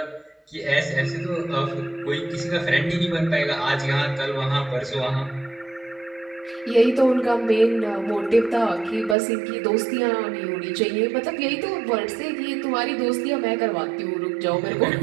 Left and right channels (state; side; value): drops out; left; at 9.2 s